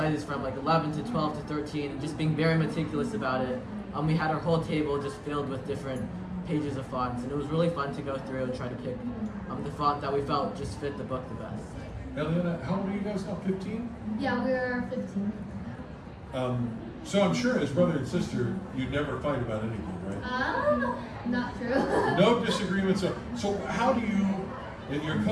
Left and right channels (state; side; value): identical; both; correlation 1.00